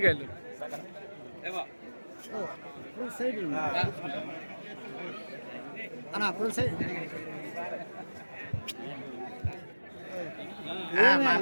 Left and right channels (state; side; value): inverted; both; correlation -1.00